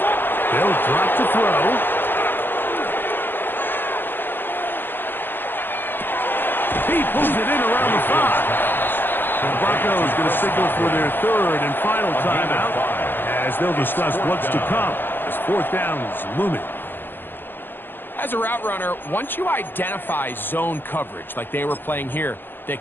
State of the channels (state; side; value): late; right; 0.098 ms